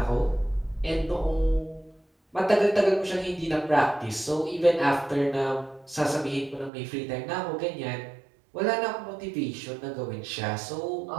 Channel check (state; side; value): drops out; left; at 6.7 s